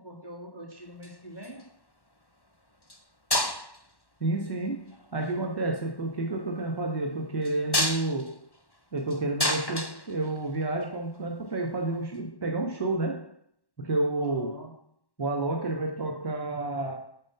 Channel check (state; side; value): late; right; 1.1 ms